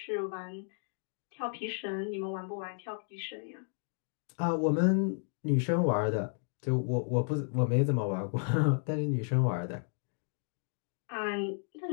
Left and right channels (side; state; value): right; silent; 56 dB below the other